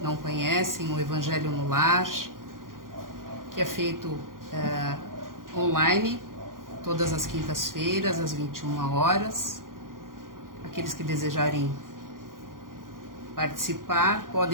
não conhecem o Evangelho no Lar, que é feito online, todas as quintas-feiras, às 21 horas. Aqueles que desejarem participar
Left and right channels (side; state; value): left; late; 0.90 ms